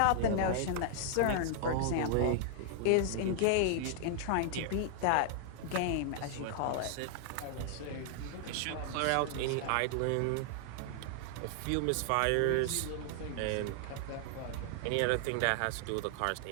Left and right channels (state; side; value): different; both; correlation 0.00